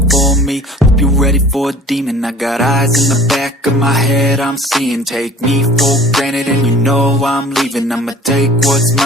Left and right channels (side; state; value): both; normal; correlation 0.46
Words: for me, hope you're ready for a demon. I got eyes in the back of my head, I'm seeing. Take me for granted and you know I'm leaving. I'ma take what's